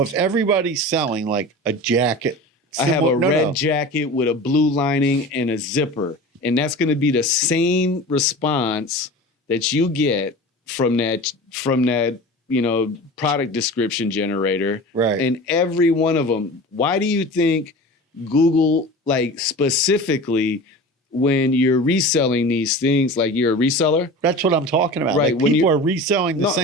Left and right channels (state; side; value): normal; both; correlation 0.34